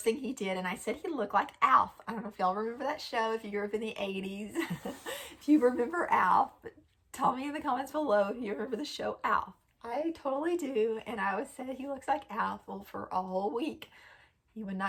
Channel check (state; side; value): identical; both; correlation 1.00